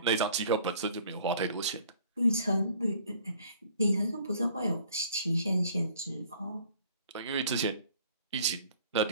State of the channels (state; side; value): inverted; both; correlation -0.55